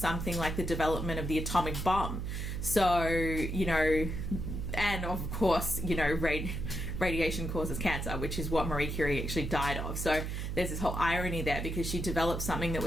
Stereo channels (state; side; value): noise; right; hum, 4 dB below the sound